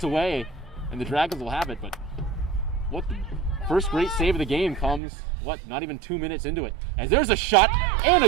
away, and the Dragons will have it, but what the first great save of the game comes, not even 2 minutes into it. As there's a shot and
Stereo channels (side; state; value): left; drops out; at 5.0 s